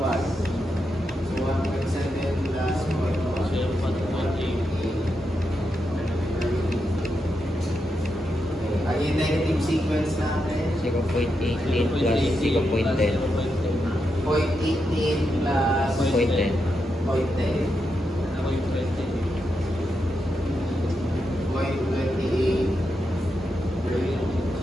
So, 1.7 plus 0.1. Ang yung negative sequence natin? 0.18 plus 0.10. 0.18 plus 0.10. 0.10. 0.28.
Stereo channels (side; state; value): both; normal; correlation 0.85